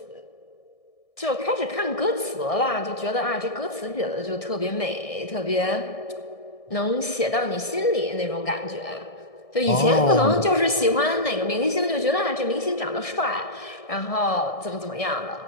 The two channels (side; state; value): right; late; 1.6 ms